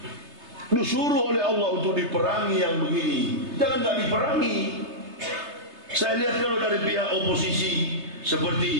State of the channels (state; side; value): late; left; 3.3 ms